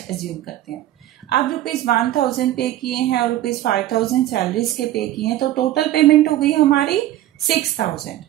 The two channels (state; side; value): quieter; left; 13.8 dB